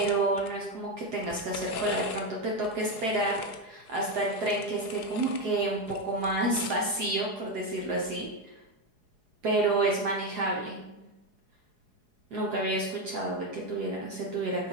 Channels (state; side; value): late; left; 4.8 ms